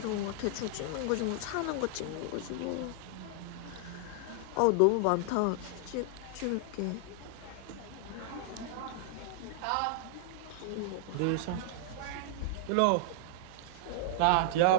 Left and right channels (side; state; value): both; different; correlation -0.01